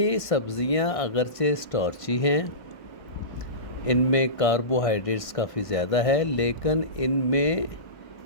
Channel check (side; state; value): right; late; 1.5 ms